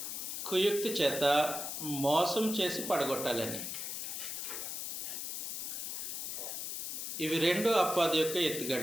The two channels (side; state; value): left; noise; hiss, 4 dB below the sound